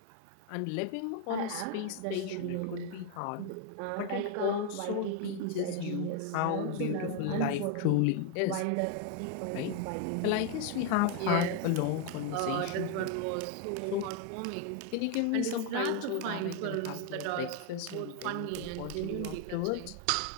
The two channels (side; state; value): both; different; correlation 0.01